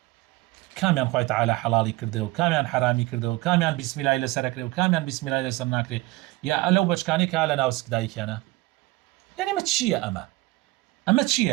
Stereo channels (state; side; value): quieter; left; 20.3 dB